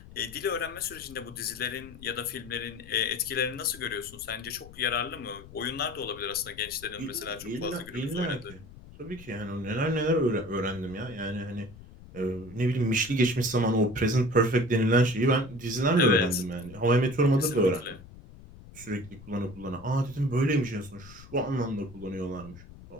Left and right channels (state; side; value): noise; left; rumble, 18 dB below the sound